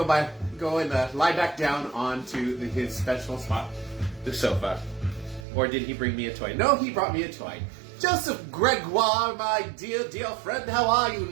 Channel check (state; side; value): drops out; left; at 5.5 s